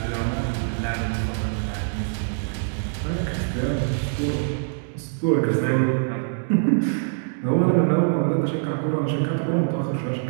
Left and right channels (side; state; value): left; silent; 63 dB below the other